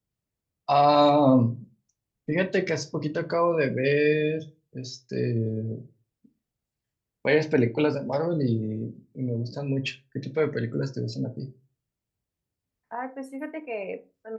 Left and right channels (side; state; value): both; identical; correlation 1.00